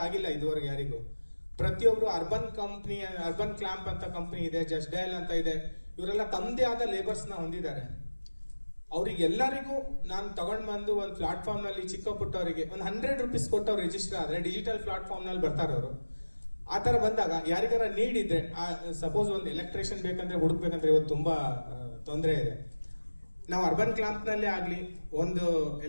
ಆಗಿಲ್ಲ ಇದುವರೆಗೆ ಯಾರಿಗೂ. ಪ್ರತಿಯೊಬ್ರು ಅರ್ಬನ್ ಕ್ಲಾಂಪ್ ಅಂತ ಕಂಪನಿ ಇದೆ, ಜಸ್ಟ್ ಡಯಲ್ ಅಂತ ಇದೆ, ಇವರೆಲ್ಲ ತಮ್ಮದೇ ಆದ ಲೇಬರ್ಸ್ ನ ಹೊಂದಿದ್ದಾರೆ. ಅವ್ರಿಗೆಲ್ಲರಿಗೂ ನಾನು ತಗೊಂಡ್ ಬಂದು ಒಂದು ಪ್ಲಾಟ್ಫಾರ್ಮ್ ನಲ್ಲಿ ಚಿಕ್ಕ ಪುಟ್ಟವರಿಗೆ ಒಂದು ₹100 ಕೊಟ್ಟು ಅವ್ರು ರಿಜಿಸ್ಟರ್ ಆದ್ರೆ ಡಿಜಿಟಲ್ ಪ್ಲಾಟ್ಫಾರ್ಮ್ ನಲ್ಲಿ ಬರ್ತಾರೆ ಅವರು. ಆ ತರ ಬಂದಾಗ ಯಾರಿಗಾರ ನೀಡ್ ಇದ್ರೆ, ಸಪೋಸ್ ಒಂದು ಎಲೆಕ್ಟ್ರಿಷಿಯನ್ ಬೇಕಂದ್ರೆ ಹುಡುಕ್ಬೇಕಂದ್ರೆ ಇವತ್ತು ತುಂಬಾ ತೊಂದರೆ ಇದೆ. ನಾವು ಅರ್ಬನ್ ಕ್ಲಾಂಪ್ ನಲ್ಲಿ ಆಗ್ಲಿ ಒಂದು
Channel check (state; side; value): inverted; both; correlation -1.00